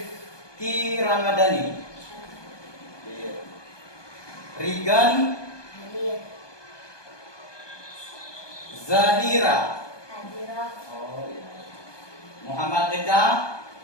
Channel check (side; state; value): right; late; 1.2 ms